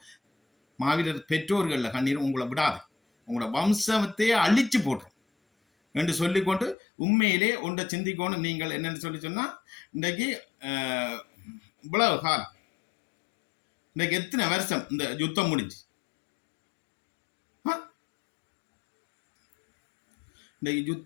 மாவீரர் பெற்றோர்களில் கண்ணீரும் உங்களை விடாது, உங்களோட வம்சத்தையே அழிச்சு போட்டுரும் என்று சொல்லிக்கொண்டு உண்மையிலே ஒன்றை சிந்திக்கணும். நீங்கள் என்னன்னு சொன்னா இன்றைக்கு இவ்வளவு காலம் இன்றைக்கு எத்தனை வருஷம் இந்த யுத்தம் முடிஞ்சு இன்றைக்கு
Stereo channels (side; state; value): right; drops out; at 6.8 s